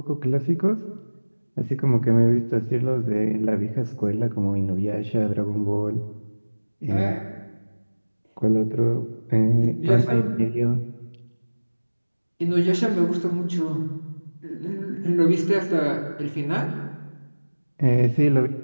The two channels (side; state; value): both; inverted; correlation -1.00